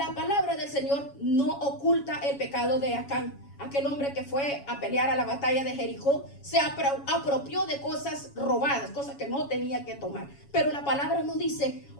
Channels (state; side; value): late; right; 7.2 ms